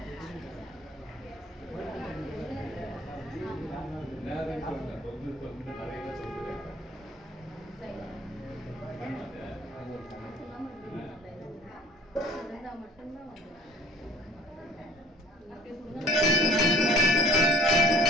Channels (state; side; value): normal; both; correlation 0.52